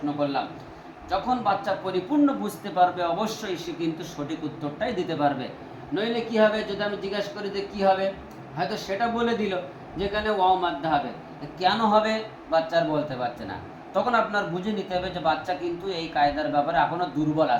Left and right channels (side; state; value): both; identical; correlation 1.00